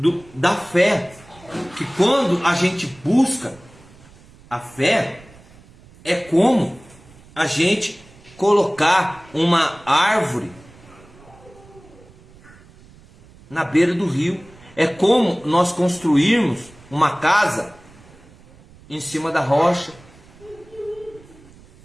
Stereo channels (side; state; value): right; noise; rumble, 24 dB below the sound